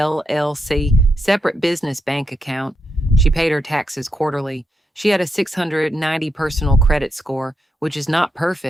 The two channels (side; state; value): both; normal; correlation 0.82